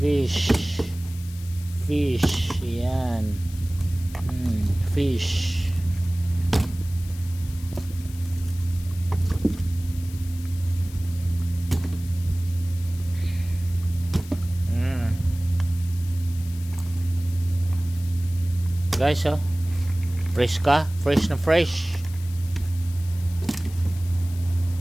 Fish. Fish. Ayan. Fish. Guys, oh. Fresh ka? Fresh na fresh.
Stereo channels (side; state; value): left; noise; hiss, 19 dB below the sound